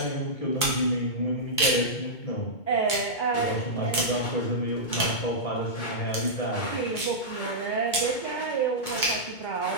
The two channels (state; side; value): late; right; 2.2 ms